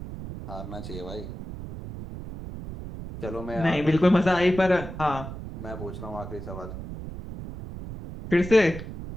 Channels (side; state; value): right; noise; rumble, 10 dB below the sound